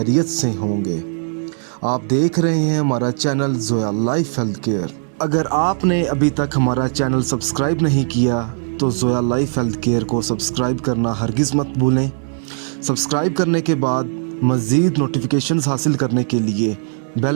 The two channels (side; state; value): left; silent; digital silence